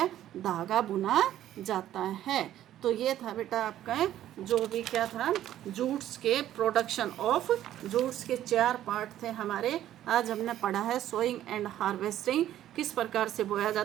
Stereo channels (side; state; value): left; quieter; 12.4 dB